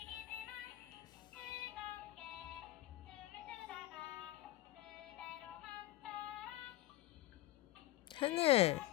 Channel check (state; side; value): quieter; right; 16.4 dB